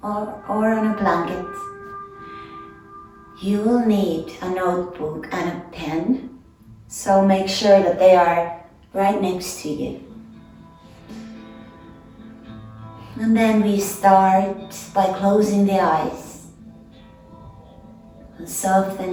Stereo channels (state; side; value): identical; both; correlation 1.00